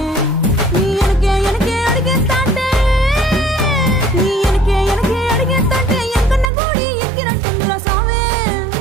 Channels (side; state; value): left; drops out; at 6.5 s